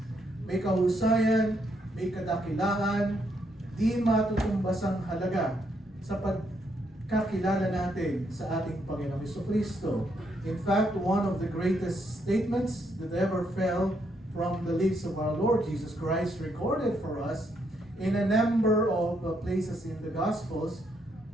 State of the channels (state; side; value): normal; both; correlation 0.75